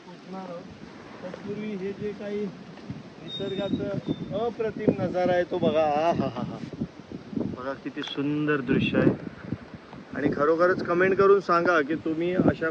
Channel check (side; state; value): both; identical; correlation 1.00